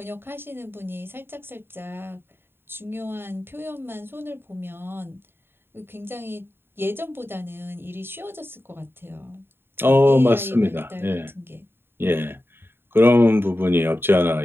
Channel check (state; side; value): late; left; 0.11 ms